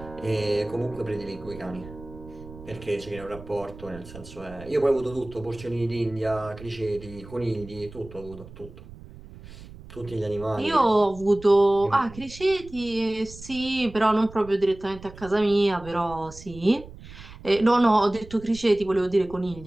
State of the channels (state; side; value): noise; right; rumble, 17 dB below the sound